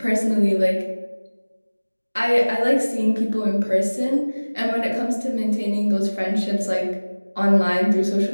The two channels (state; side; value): inverted; both; correlation -1.00